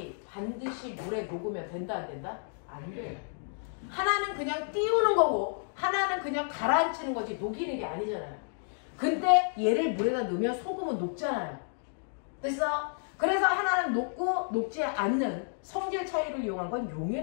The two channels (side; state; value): right; silent; digital silence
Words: 반드시 물에 녹으면 된다 안 된다? 안 돼요. 하나는 그냥 띄우는 거고 하나는 그냥 가라앉히는 거지 녹이는 게 아니잖아요. 근데 얘를 물에다 넣으면 소금은 녹잖아요. 됐어? 그래서 하나는 녹고 녹지 않는 성질 차이를 이용한 건